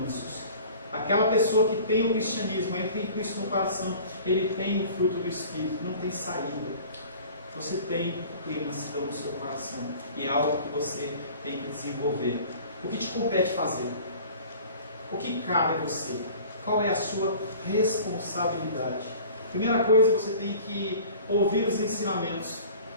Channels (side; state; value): both; inverted; correlation -0.45